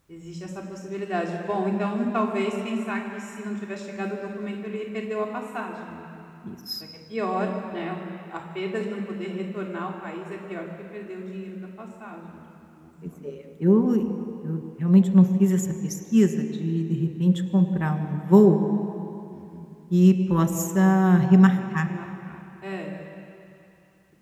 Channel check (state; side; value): identical; both; correlation 1.00